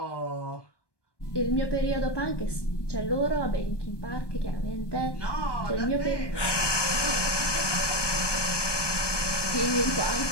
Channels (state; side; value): late; right; 1.2 ms